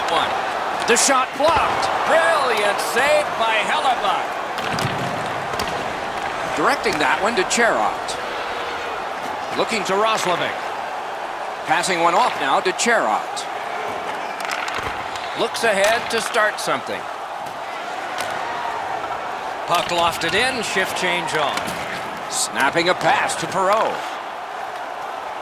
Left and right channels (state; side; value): identical; both; correlation 1.00